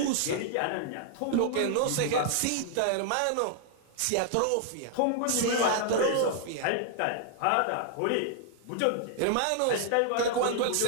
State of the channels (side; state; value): both; different; correlation -0.01